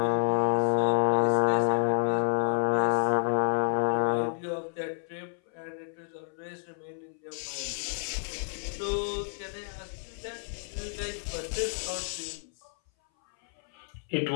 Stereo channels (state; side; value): silent; right; 57 dB below the other